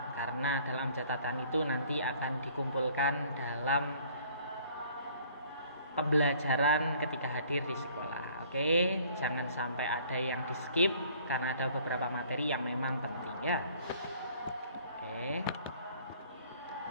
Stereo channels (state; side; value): inverted; both; correlation -0.56